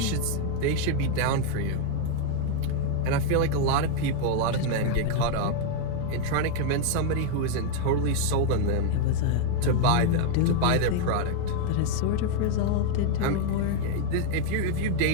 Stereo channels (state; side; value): different; both; correlation 0.00